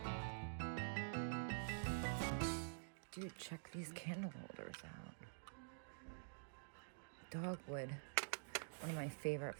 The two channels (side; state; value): left; silent; digital silence